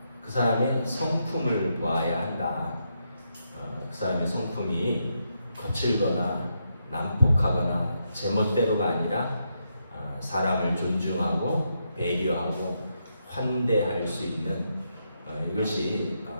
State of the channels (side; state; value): both; inverted; correlation -0.81